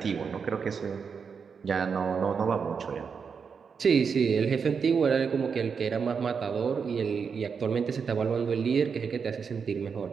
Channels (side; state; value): left; quieter; 6.0 dB